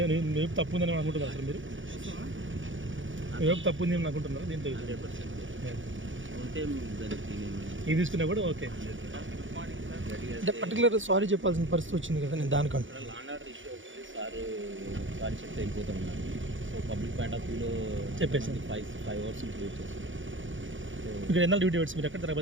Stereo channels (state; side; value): late; left; 0.56 ms